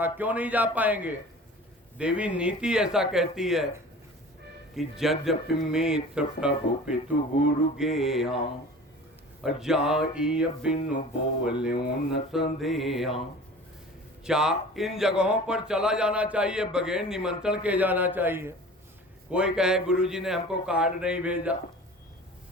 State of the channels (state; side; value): normal; both; correlation 0.41